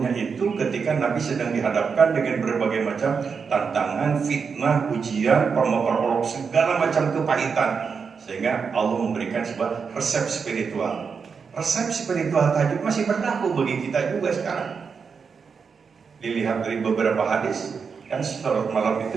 itu ketika Nabi sedang dihadapkan dengan berbagai macam tantangan, fitnah, ujian, perolok, segala macam kepahitan. Sehingga Allah memberikan sebuah resep spiritual. Resep spiritual tahajud masih berlaku bagi kita juga sekarang. Dilihat dari beberapa hadis, kan sholat malam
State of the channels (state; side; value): quieter; left; 5.8 dB